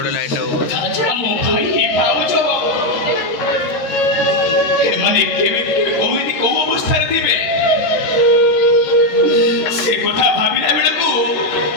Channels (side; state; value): right; late; 13 ms